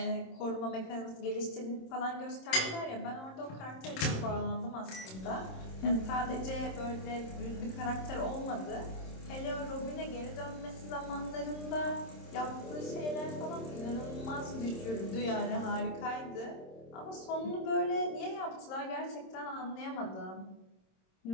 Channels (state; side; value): late; right; 26 ms